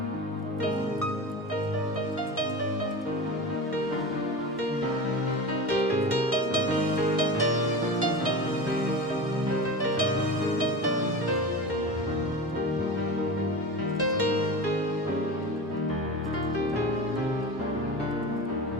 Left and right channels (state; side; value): normal; both; correlation 0.29